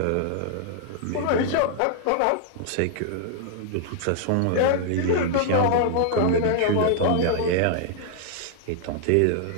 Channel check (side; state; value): both; different; correlation 0.00